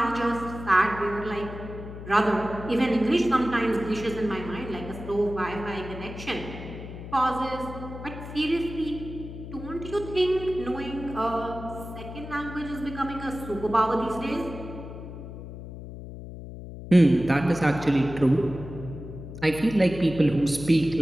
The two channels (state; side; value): noise; left; hum, 11 dB below the sound